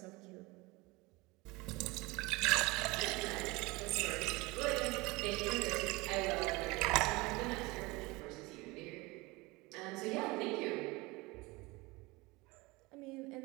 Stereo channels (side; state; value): left; quieter; 23.5 dB